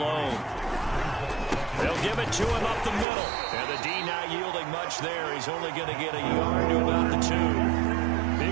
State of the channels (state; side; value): drops out; left; at 3.1 s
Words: They'll give it to him up the middle, and the D not yielding much there. He's only going to get a yard to about the 2.